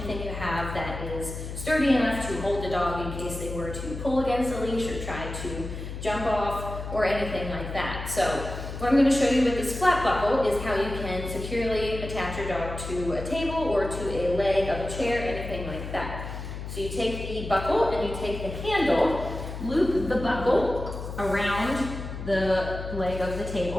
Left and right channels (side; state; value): left; noise; hum, 8 dB below the sound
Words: you have that is sturdy enough to hold the dog in case they were to pull against the leash or try to jump off or anything like that. So what I'm going to show you with this flat buckle is how you can securely attach your dog to a table or to a leg of a chair, anything like that. So you take the buckle and you take the handle, loop the buckle around the leg of the